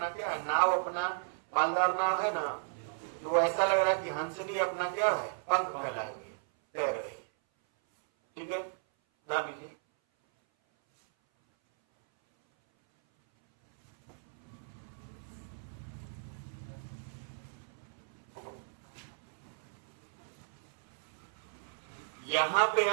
क्या है, नाव अपना पालदार नाव है ना, तो ऐसा लग रहा है कि हंसनी अपना क्या है, पंख फैलाए हुए तैर रही। ठीक है, जान लीजिए। यहां पे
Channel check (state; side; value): silent; left; 55 dB below the other